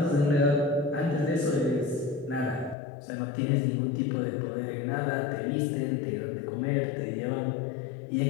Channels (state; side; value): drops out; right; at 2.8 s